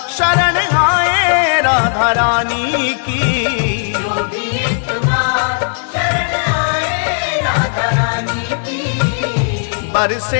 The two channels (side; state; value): right; silent; 57 dB below the other